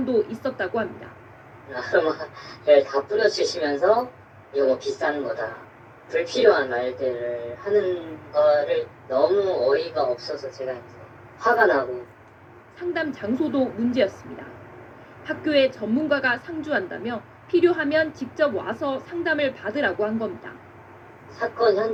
있었다고 합니다. 아르마를 다 뿌려주시면서 이거 뭐 비싼 거다. 불필요한 말들을 하는 거를 너무 어이가 없어서 제가 이제 화가 나고. 상담 장소도 문제였습니다. 학교에 전문가가 상주한다며 필요하면 직접 와서 상담을 받으라고 한 겁니다. 사건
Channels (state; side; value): identical; both; correlation 1.00